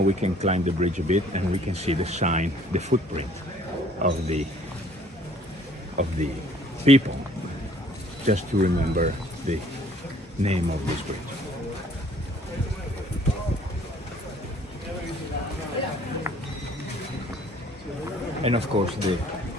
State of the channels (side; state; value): both; normal; correlation 0.57